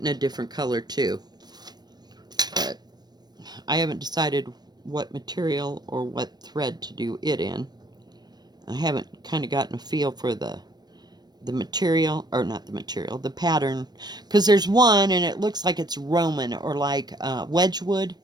a different color too. But I haven't decided what material or what thread to do it in. I haven't kind of gotten a feel for the material, or not the material, the pattern, because there's one and it looks like it's Roman or like Wedgwood,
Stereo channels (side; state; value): left; late; 0.20 ms